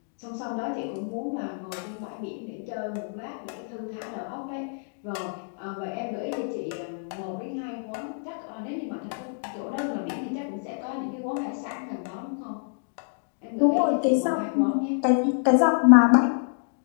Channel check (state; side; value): silent; right; digital silence